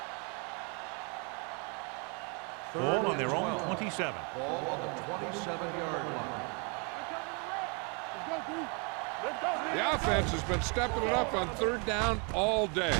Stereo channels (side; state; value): left; quieter; 35.3 dB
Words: Ball on their own 27. Ball on the 27-yard line. The offense has been stepping it up on third down all day.